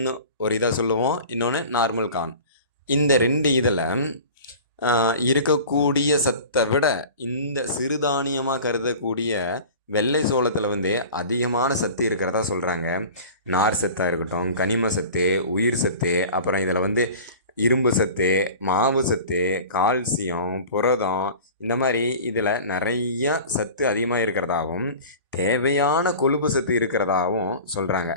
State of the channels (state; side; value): inverted; both; correlation -0.39